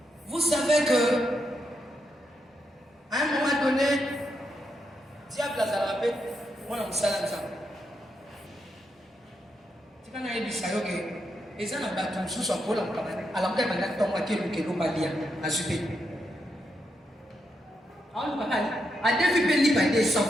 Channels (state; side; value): normal; both; correlation 0.82